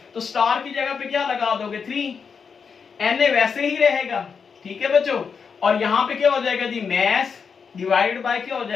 तो स्टार की जगह पे क्या लगा दोगे, 3। Na वैसे ही रहेगा। ठीक है बच्चों, और यहाँ पे क्या हो जाएगा जी, मैस डिवाइडेड बाय क्या हो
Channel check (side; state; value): right; quieter; 6.0 dB